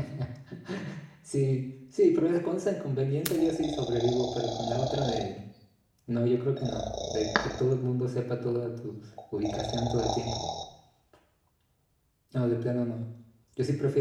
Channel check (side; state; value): both; identical; correlation 1.00